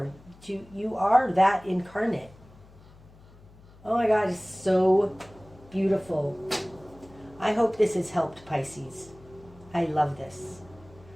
You are that incarnate. Oh my God, it's so beautiful. I hope this has helped, Pisces. I love this.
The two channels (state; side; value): noise; left; hum, 24 dB below the sound